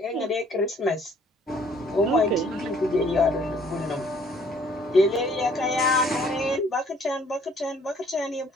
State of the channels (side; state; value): both; normal; correlation 0.60